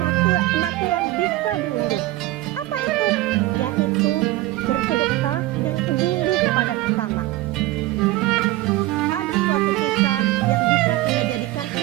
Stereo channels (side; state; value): left; quieter; 17.4 dB